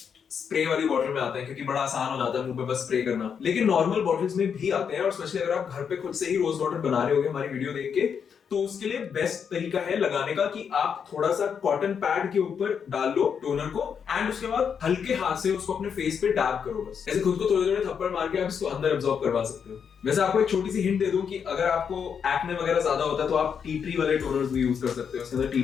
स्प्रे वाली बॉटल में आते हैं, क्योंकि बड़ा आसान हो जाता है मुंह पे बस स्प्रे करना, लेकिन नॉर्मल बॉटल्स में भी आते हैं, और स्पेशली अगर आप घर पे खुद से ही रोज वाटर बना रहे होगे हमारी वीडियो देख के, तो उसके लिए बेस्ट तरीका है लगाने का कि आप थोड़ा सा कॉटन पैड के ऊपर डाल लो टोनर को, एंड उसके बाद हल्के हाथ से उसको अपने फेस पे डैब करो, बस ऐसे खुद को थोड़े थोड़े थप्पड़ मार के आप इसको अंदर एब्जॉर्ब करवा सकते हो। वैसे आपको एक छोटी सी हिंट दे दूं कि अगर आपको एक्ने वगैरह ज्यादा होता है तो आप टी ट्री वाले टोनर्स भी यूज कर सकते हो, उसके अंदर टी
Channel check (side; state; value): right; quieter; 7.1 dB